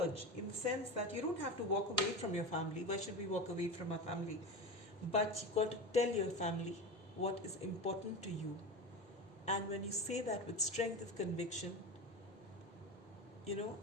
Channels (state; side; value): normal; both; correlation 0.25